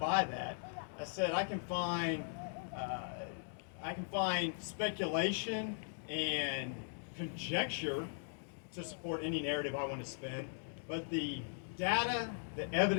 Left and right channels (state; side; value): silent; right; digital silence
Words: that. I said, I can find speculation and conjecture to support any narrative I want to spin, but the data, the